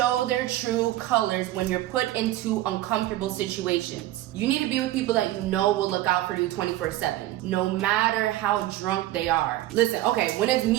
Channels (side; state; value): left; quieter; 15.2 dB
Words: their true colors when you're put into uncomfortable situations. You need to be with people that you know will look out for you 24/7, no matter how drunk they are. Listen, okay, when it's